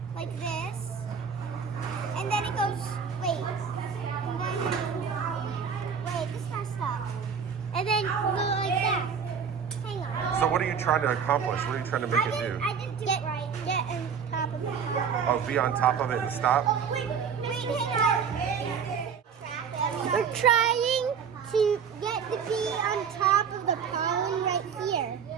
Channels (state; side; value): quieter; left; 6.7 dB